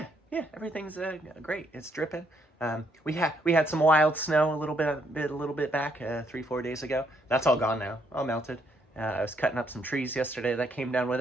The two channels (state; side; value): normal; both; correlation 0.72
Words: everything's great. It's dripping. We had some wild snow a little bit back 3-4 days ago. That's all gone now. All melted. I was cutting up some trees yesterday that came down with